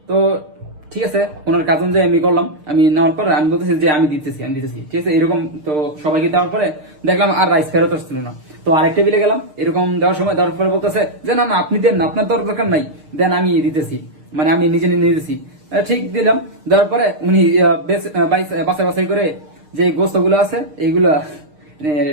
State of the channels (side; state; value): left; late; 6.6 ms